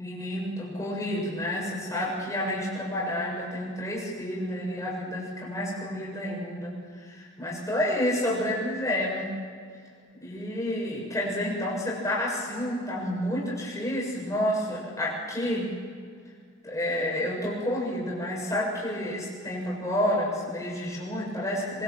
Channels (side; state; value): both; normal; correlation 0.42